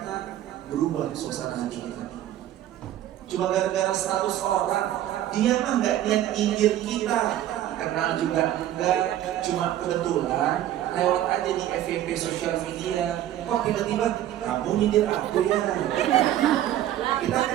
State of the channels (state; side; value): quieter; left; 12.5 dB